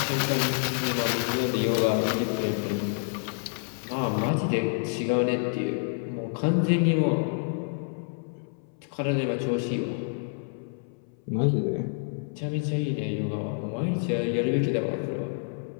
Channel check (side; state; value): right; silent; 59 dB below the other